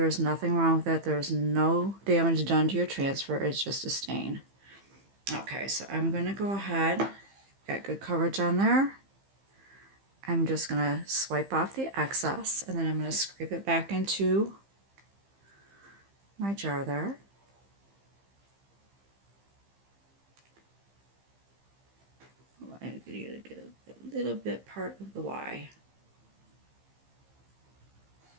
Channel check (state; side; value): late; left; 15 ms